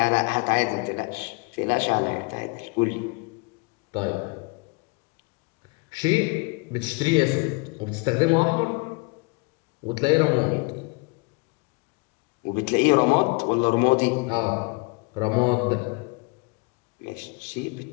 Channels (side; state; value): right; quieter; 29.4 dB